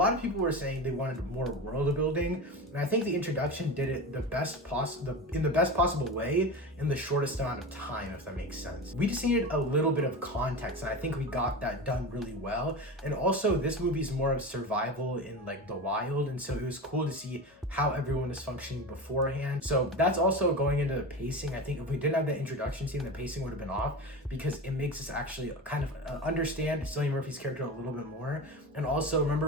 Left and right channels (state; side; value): normal; both; correlation 0.27